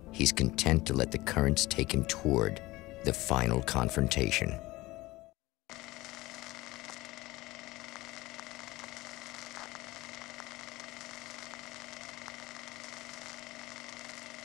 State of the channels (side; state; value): right; quieter; 19.6 dB